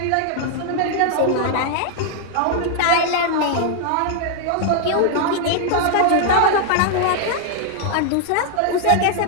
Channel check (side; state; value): both; different; correlation -0.01